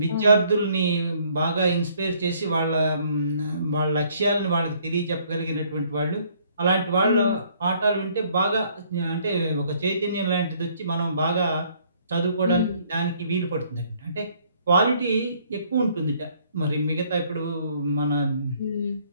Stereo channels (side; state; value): both; inverted; correlation -0.63